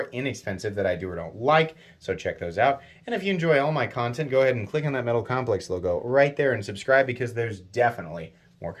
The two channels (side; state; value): both; identical; correlation 1.00